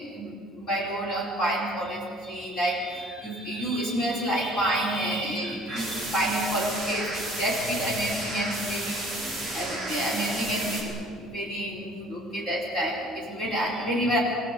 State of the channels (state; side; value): normal; both; correlation 0.52